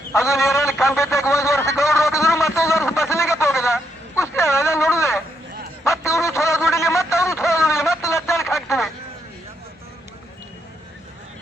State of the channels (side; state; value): both; normal; correlation 0.77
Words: ಅದು ನೀರಲ್ಲಿ ಕಂಬಿದ್ದಾಗ 1 ವರ್ಷ ಗೌಡ್ರು ಹೋಗಿದ್ರು ಮತ್ತೊಂದು ವರ್ಷ ಬಸಲಿಂಗಪ್ಪ ಹೋಗಿದ ಕುಸ್ತಿ ಅದ ನೋಡುದೆ. ಮತ್ತೆ ಇವರು ಚಲೋ ದುಡಿಲಿ ಮತ್ತೆ ಅವರು ಚಲೋ ದುಡಿಲಿ ಮತ್ತೆ ಲಜ್ಜಾನಕ್ಕೆ ಹಾಕ್ತೀವಿ.